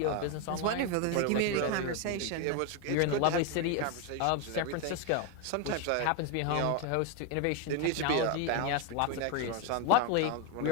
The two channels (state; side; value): different; both; correlation 0.01